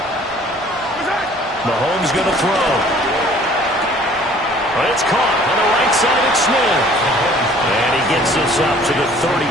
Mahomes going to throw. But it's caught on the right side of Smith. And he gets this up to the 34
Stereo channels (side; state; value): right; noise; hum, 26 dB below the sound